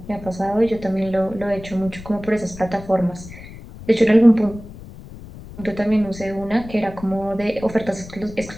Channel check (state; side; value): noise; left; rumble, 15 dB below the sound